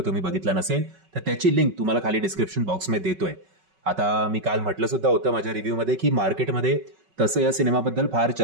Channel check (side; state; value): left; late; 5.3 ms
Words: तुम्ही बघितला नसेल तर त्याची लिंक तुम्हाला खाली डिस्क्रिप्शन बॉक्समध्ये देतोय. आता मी काल म्हटलं सुद्धा होतं माझ्या रिव्ह्यूमध्ये की मार्केटमध्ये तसं या सिनेमाबद्दल फार